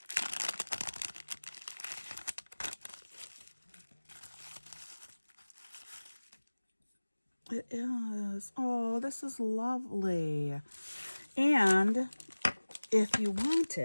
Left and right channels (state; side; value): inverted; both; correlation -1.00